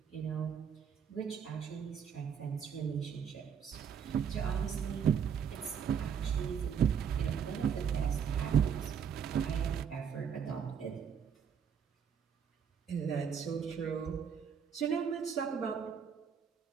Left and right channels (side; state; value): left; quieter; 7.5 dB